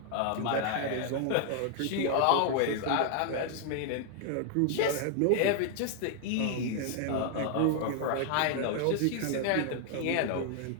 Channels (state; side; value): different; both; correlation 0.00